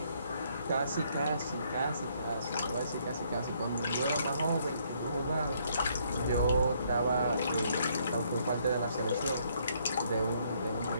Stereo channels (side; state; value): both; inverted; correlation -0.68